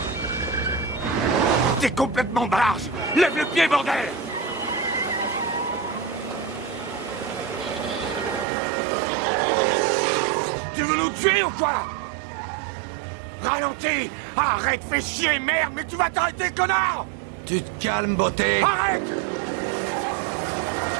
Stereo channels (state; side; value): drops out; left; at 8.5 s